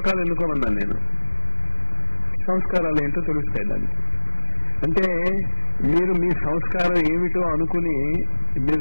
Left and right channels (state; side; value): inverted; both; correlation -1.00